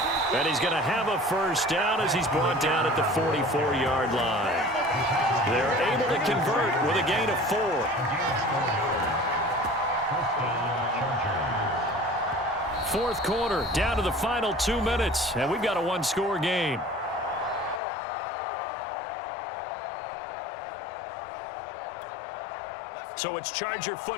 And he's going to have a first down as he's brought down at the 44-yard line. They're able to convert with a gain of 4. Fourth quarter, down to the final 2 minutes, and we've got a 1-score game. So it's Charger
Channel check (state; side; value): drops out; right; at 17.8 s